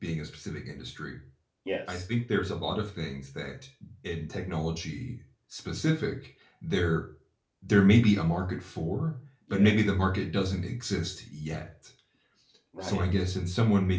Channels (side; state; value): both; identical; correlation 1.00